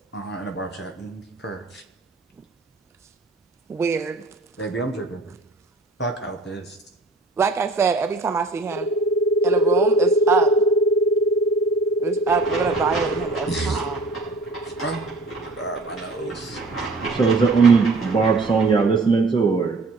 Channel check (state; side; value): quieter; left; 3.2 dB